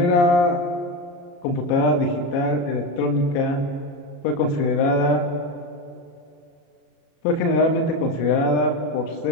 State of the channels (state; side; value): late; right; 34 ms